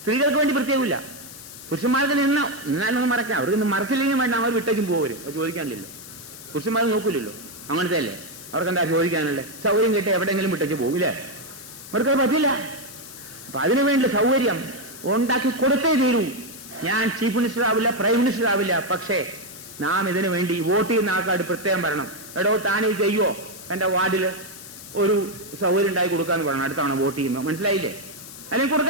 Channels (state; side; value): noise; left; hiss, 15 dB below the sound